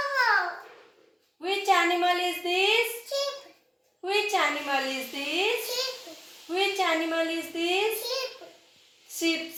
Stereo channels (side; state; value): both; identical; correlation 1.00